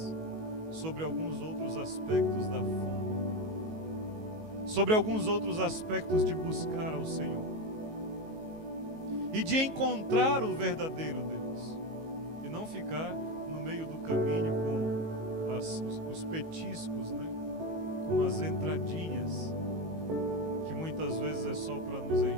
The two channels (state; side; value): late; left; 19 ms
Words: sobre alguns outros aspectos da fome, sobre alguns outros aspectos de buscar ao Senhor e de encontrar o verdadeiro Deus, e não ficar no meio do caminho com os petiscos, né? Com as entradinhas, que muitas vezes é só para nos